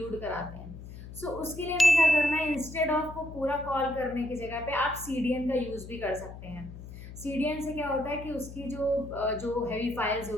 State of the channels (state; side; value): noise; left; hum, 13 dB below the sound